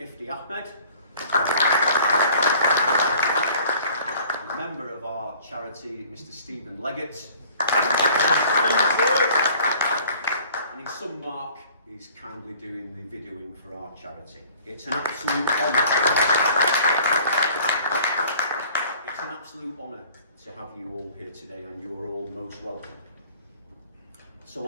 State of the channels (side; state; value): both; inverted; correlation -0.52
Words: Ahmed, and a member of our charity, Mr. Stephen Leggett. And in some mark, he's kindly doing the videoing for our charity. It's an absolute honour. It's an absolute honour to have you all here today, and you are all most welcome. So a